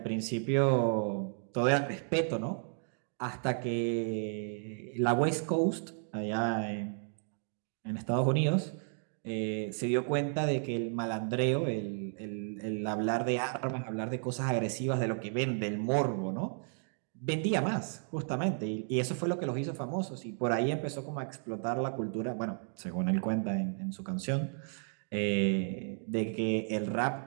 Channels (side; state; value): left; silent; 56 dB below the other